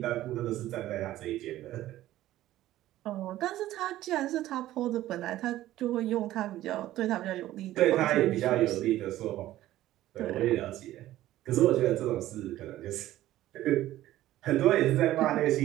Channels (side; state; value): left; quieter; 14.6 dB